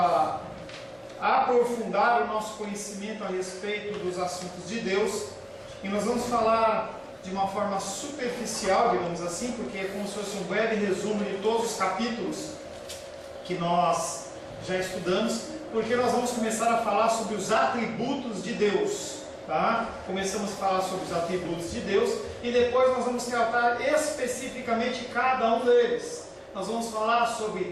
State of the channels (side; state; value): both; identical; correlation 1.00